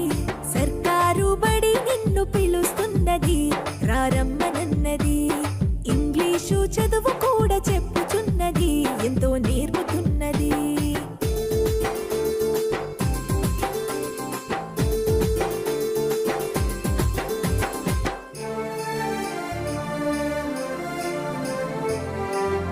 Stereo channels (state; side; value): identical; both; correlation 1.00